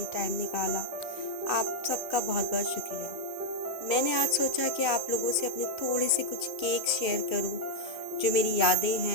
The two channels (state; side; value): late; right; 2.5 ms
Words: टाइम निकाला, आप सबका बहुत बहुत शुक्रिया। मैंने आज सोचा कि आप लोगों से अपने थोड़े से कुछ केक शेयर करूं, जो मेरी यादें